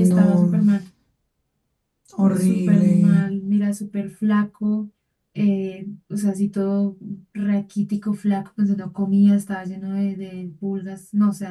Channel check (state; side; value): identical; both; correlation 1.00